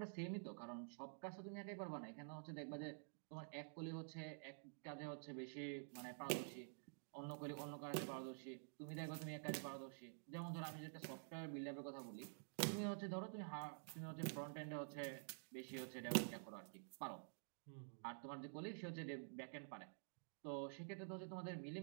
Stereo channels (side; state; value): left; silent; digital silence